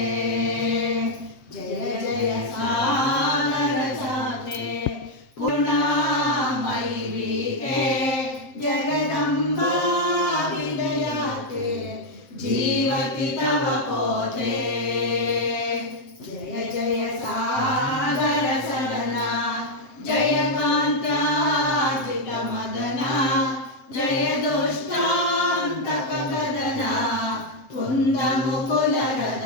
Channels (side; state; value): right; late; 7.8 ms